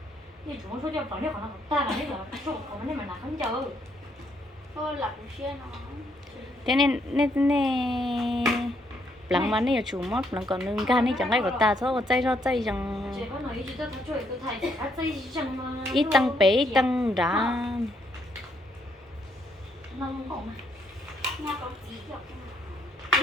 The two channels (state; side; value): normal; both; correlation 0.73